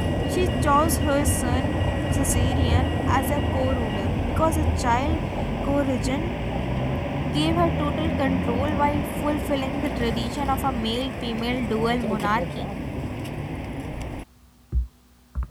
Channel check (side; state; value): both; identical; correlation 1.00